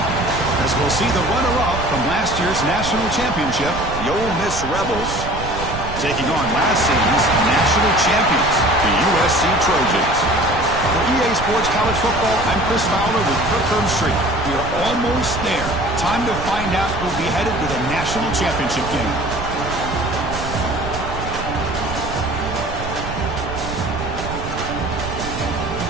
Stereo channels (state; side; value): noise; right; rumble, 8 dB below the sound